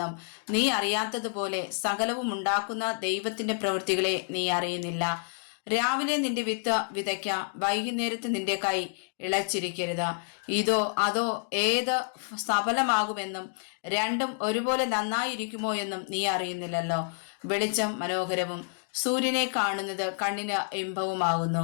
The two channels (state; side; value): silent; right; 59 dB below the other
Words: നീ അറിയാത്തതുപോലെ സകലവും ഉണ്ടാക്കുന്ന ദൈവത്തിന്റെ പ്രവൃത്തികളെ നീ അറിയുന്നില്ല. രാവിലെ നിന്റെ വിത്ത് വിതയ്ക്ക, വൈകുന്നേരത്ത് നിന്റെ കൈ ഇളച്ചിരിക്കരുത്. ഇതോ അതോ ഏത് സഫലമാകുമെന്നും രണ്ടും ഒരുപോലെ നന്നായിരിക്കുമോ എന്നും നീ അറിയുന്നില്ലല്ലോ. വെളിച്ചം മനോഹരവും സൂര്യനെ കാണുന്നത് കണ്ണിന്